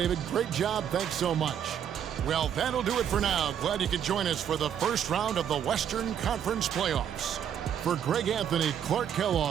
great job. Thanks so much. Well, that'll do it for now. Glad you could join us for the first round of the Western Conference Playoffs. For Greg Anthony, Clark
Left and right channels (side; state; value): left; quieter; 9.0 dB